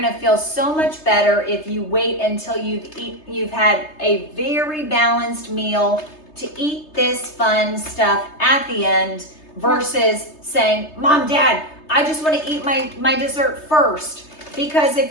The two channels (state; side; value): late; right; 3.3 ms